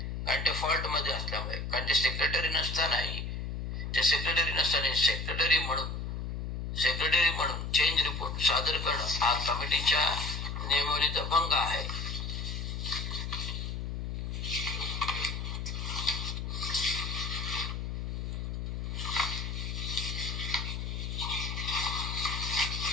कारण ते फॉल्ट मध्ये असल्यामुळे, कारण ते सेक्रेटरी नसतानाही ते सेक्रेटरी म्हणून चेंज रिपोर्ट सादर करणं हा कमिटीच्या नियमावलीचा भंग आहे.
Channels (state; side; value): noise; left; hum, 4 dB below the sound